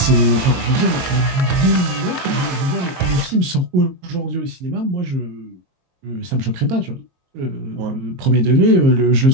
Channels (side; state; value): left; late; 22 ms